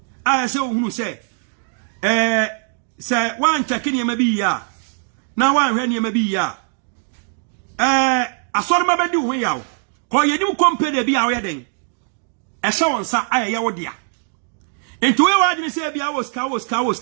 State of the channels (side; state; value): left; silent; 65 dB below the other